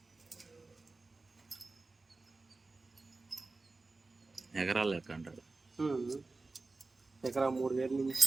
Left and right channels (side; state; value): left; quieter; 3.6 dB